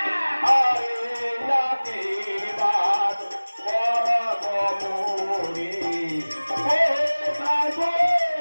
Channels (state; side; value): inverted; both; correlation -1.00